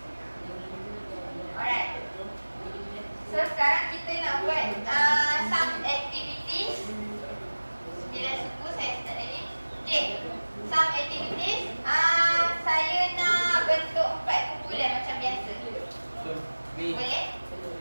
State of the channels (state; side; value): inverted; both; correlation -1.00